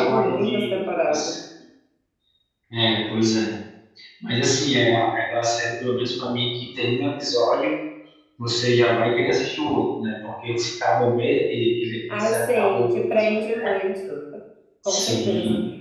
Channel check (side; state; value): both; identical; correlation 1.00